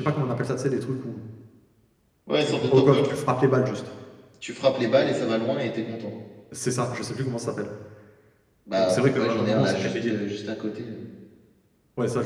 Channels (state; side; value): identical; both; correlation 1.00